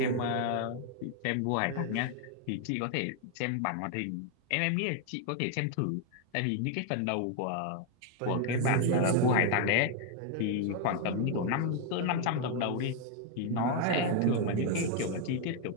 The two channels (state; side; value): different; both; correlation 0.00